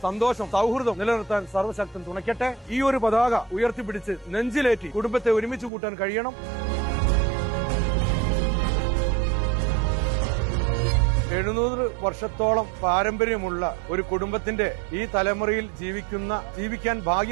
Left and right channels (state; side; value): drops out; left; at 5.7 s